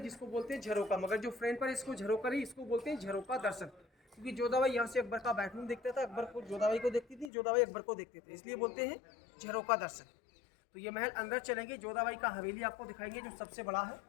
बोलते हैं झरोका, मगर जो फ्रंट पर इसको झरोका नहीं, इसको बोलते हैं झरोका दर्शन। क्योंकि जोधाबाई यहाँ से अकबर का बेडरूम देखता था, अकबर को जोधाबाई को देखती थी, जोधाबाई अकबर को देखते थे, इसलिए बोलते हैं झरोका दर्शन। तो ये महल अंदर चलेंगे, जोधाबाई का हवेली आपको दिखाएंगे जो सबसे बड़ा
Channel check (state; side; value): drops out; right; at 7.3 s